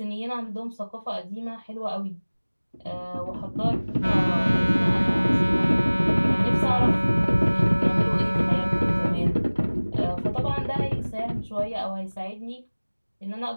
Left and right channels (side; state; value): both; inverted; correlation -1.00